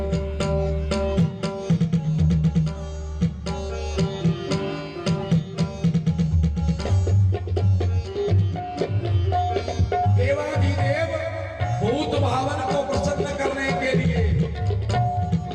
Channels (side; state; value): both; identical; correlation 1.00